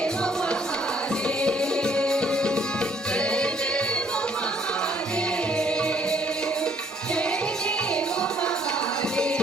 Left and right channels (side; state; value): both; normal; correlation 0.64